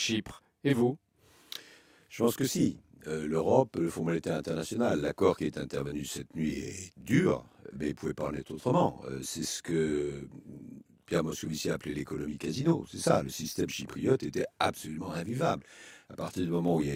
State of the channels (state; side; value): identical; both; correlation 1.00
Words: Et vous? Je pense que si. L'Europe, le Fonds monétaire international, l'accord qui est intervenu cette nuit est dur, mais il ne pouvait pas en être autrement. C'est ce que Pierre Moscovici a appelé l'économie casino. C'est ça, le système chypriote était absolument invivable. À partir du moment où il y a